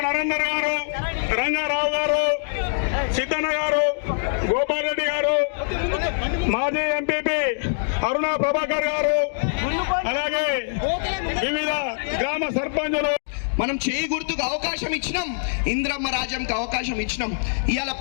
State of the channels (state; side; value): silent; right; digital silence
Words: నరేందర్ గారు, రంగారావు గారు, సిద్ధన్న గారు, గోపాల్ రెడ్డి గారు, మాజీ ఎంపీపీ అరుణ ప్రభాకర్ గారు, అలాగే వివిధ గ్రామ సర్పంచులు. మనం చేయి గుర్తుకు అవకాశం ఇచ్చినాం, ఇంద్రమ్మ రాజ్యంకి అవకాశం ఇచ్చినాం. ఇవాళ